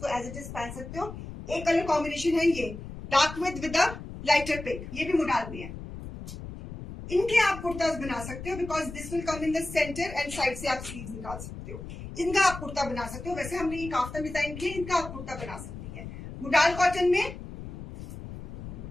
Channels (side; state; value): left; noise; rumble, 11 dB below the sound